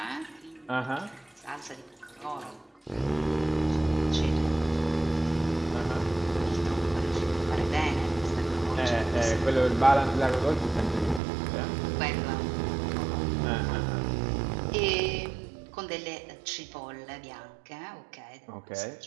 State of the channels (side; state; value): left; drops out; at 11.2 s